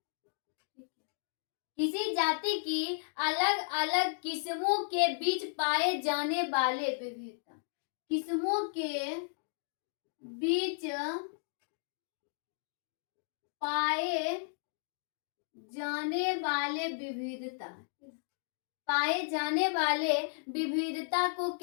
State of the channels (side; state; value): right; silent; digital silence